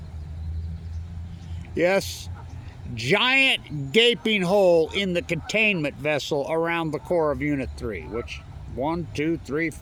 Yes, giant gaping hole in the containment vessel around the core of Unit 3, which 1, 2, 3,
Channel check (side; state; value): both; identical; correlation 1.00